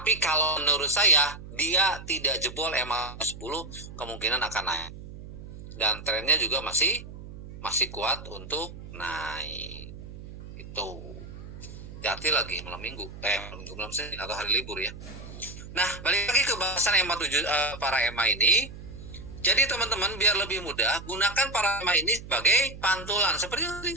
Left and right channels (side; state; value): right; noise; hum, 13 dB below the sound